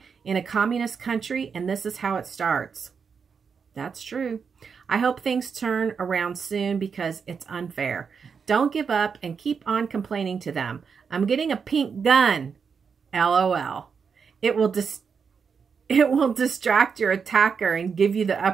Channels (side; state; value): left; quieter; 6.1 dB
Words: in a communist country, and this is how it starts. That's true. I hope things turn around soon because it's unfair. Don't give up and keep on complaining to them. I'm getting a pink gun. LOL. It will distract your attacker and give you the